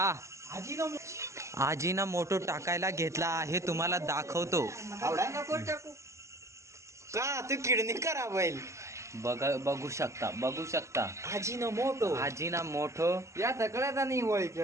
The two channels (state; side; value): late; left; 0.14 ms